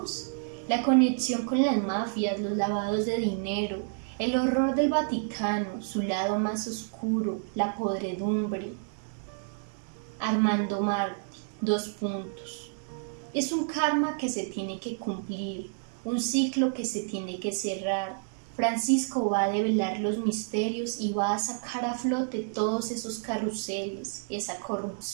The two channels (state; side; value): silent; left; digital silence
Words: La conexión con las mafias, los lavados de dinero, el horror del Vaticano, su lado más oscuro, la podredumbre. Armando Martí, 2 puntos. Es un karma que se tiene que cumplir, un ciclo que se tiene que cerrar. Francisco va a develar los misterios y va a sacar a flote todos esos carruseles, esa